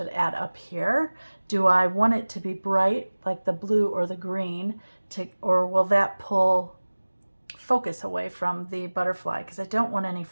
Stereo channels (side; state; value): both; inverted; correlation -1.00